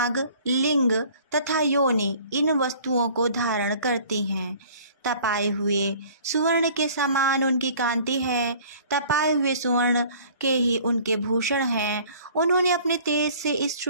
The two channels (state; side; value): inverted; both; correlation -0.51